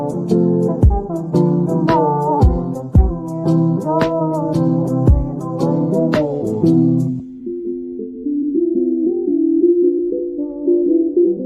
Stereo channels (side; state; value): both; identical; correlation 1.00